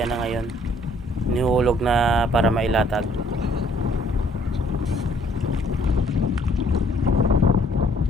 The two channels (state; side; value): normal; both; correlation 0.62